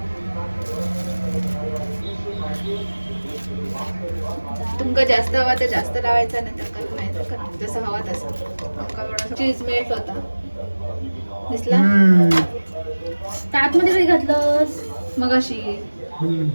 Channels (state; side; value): inverted; both; correlation -1.00